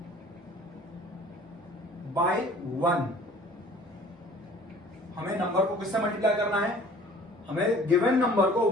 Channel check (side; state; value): both; normal; correlation 0.50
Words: by 1. हमें नंबर को किससे मल्टीप्लाई करना है? हमें गिवन नंबर को